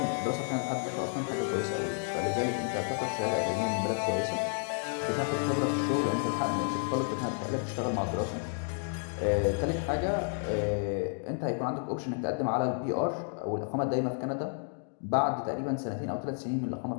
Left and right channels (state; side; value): silent; right; 57 dB below the other